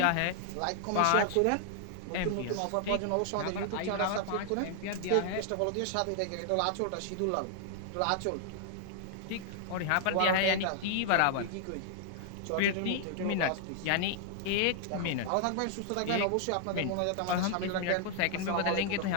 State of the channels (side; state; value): both; different; correlation 0.00